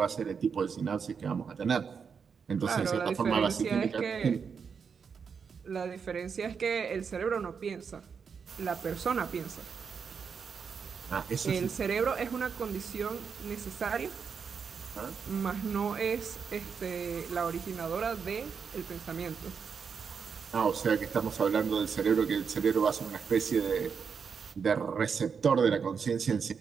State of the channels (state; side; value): quieter; left; 6.2 dB